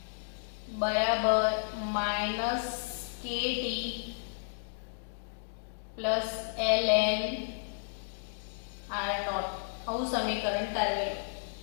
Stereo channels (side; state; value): right; silent; digital silence